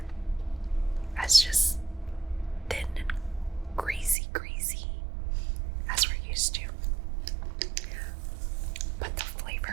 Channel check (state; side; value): drops out; left; at 4.2 s